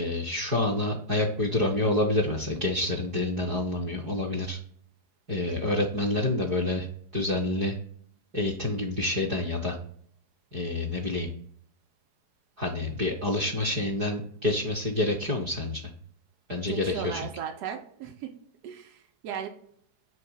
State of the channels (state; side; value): late; left; 4.8 ms